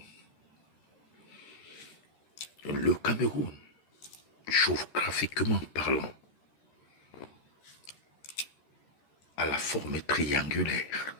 Le Cameroun, géographiquement parlant, a la forme triangulaire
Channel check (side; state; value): right; late; 13 ms